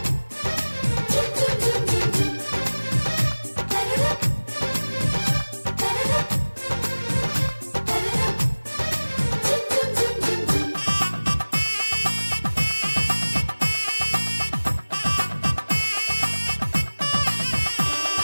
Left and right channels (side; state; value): both; inverted; correlation -1.00